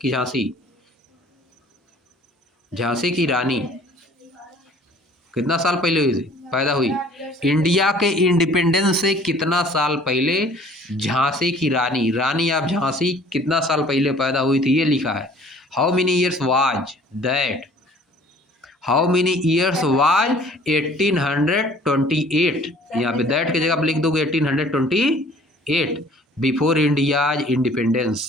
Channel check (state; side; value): normal; both; correlation 0.52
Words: झांसी की रानी, कितना साल पहले हुई थी पैदा हुई? इंडिया के इंडिपेंडेंस से कितना साल पहले झांसी की रानी आप झांसी कितना साल पहले पैदा हुई थी, ये लिखा है। How many years was that, how many years was 1828, यहाँ पे दैट की जगह आप लिख दोगे 1828 बिफोर इंडिया